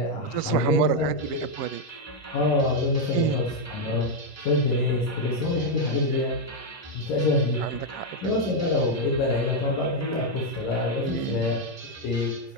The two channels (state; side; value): late; right; 11 ms